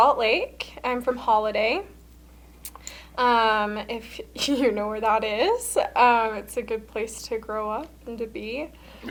Lake. I'm from Holiday. If you know where that is, it's a good place to grow up and to be.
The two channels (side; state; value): both; identical; correlation 1.00